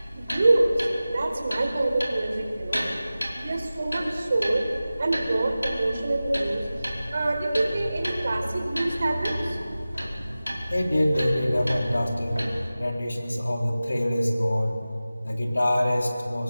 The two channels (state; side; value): inverted; both; correlation -0.96